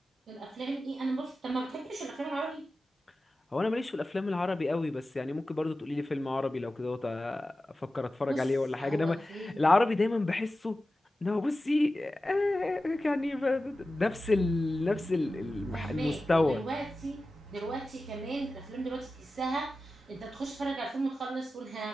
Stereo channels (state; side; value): normal; both; correlation 0.94